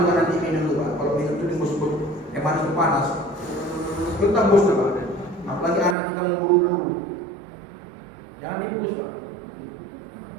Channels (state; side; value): drops out; left; at 6.0 s